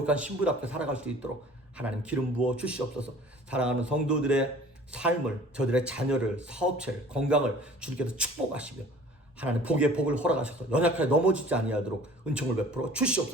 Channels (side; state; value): both; normal; correlation 0.48